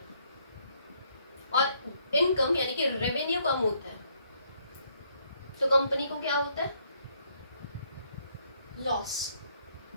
और इनकम यानी कि रेवेन्यू कम होता है, तो कंपनी को क्या होता है, लॉस।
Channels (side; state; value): both; inverted; correlation -0.70